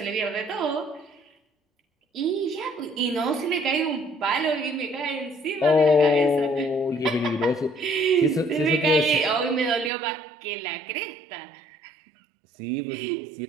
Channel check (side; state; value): left; drops out; at 9.9 s